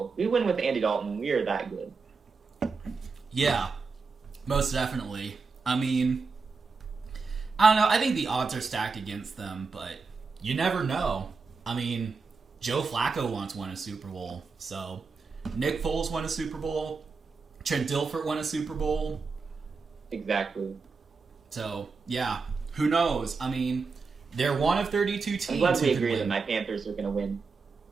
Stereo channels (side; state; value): left; quieter; 4.6 dB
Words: We win with Andy Dalton. We are that good. Yeah, most definitely. I mean, I don't know. I think the odds are stacked against them, but you never know. I mean, Joe Flacco once won a Super Bowl, so Nick Foles won a Super Bowl. Trent Dilfer won a Super Bowl. Exactly. So, yeah, who knows? I mean, they're one of 32 teams. I'm glad who we can agree win. that my Panthers are going to win.